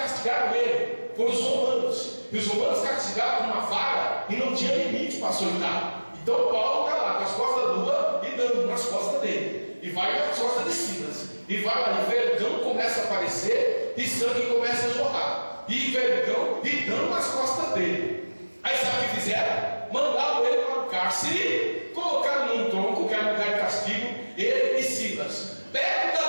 ele, foram os romanos. E os romanos castigavam com uma vara e não tinha limite para açoitar. Então Paulo está lá com as costas nuas e dando nas costas dele. E vai nas costas de Silas. E vai lá, e vergão começa a aparecer e sangue começa a jorrar. E vergão e dando nas costas dele. Aí sabe o que fizeram? Mandaram ele para o cárcere, colocaram num tronco, que era um lugar de castigo, ele e Silas. Perto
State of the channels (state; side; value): inverted; both; correlation -1.00